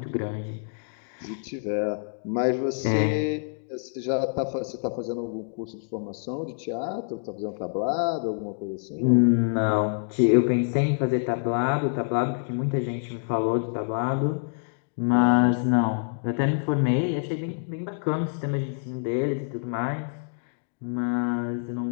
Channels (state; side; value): silent; right; digital silence